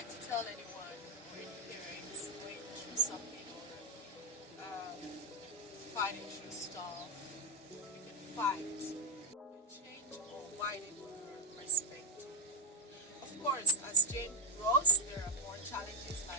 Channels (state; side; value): normal; both; correlation 0.03